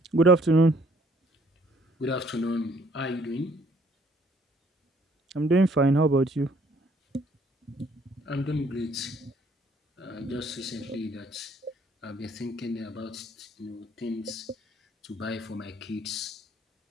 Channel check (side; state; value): both; normal; correlation 0.63